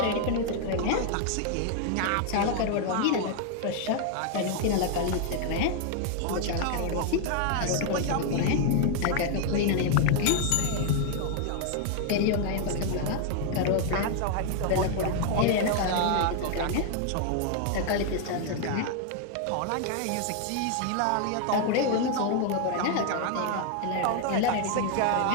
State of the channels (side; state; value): both; different; correlation 0.00